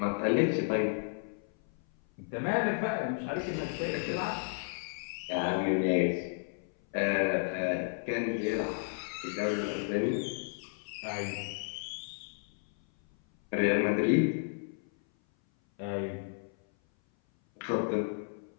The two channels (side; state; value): right; silent; 56 dB below the other